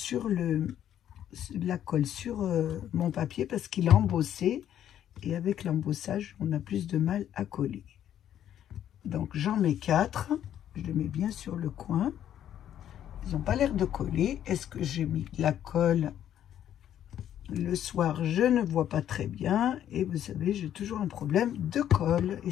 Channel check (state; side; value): quieter; right; 10.7 dB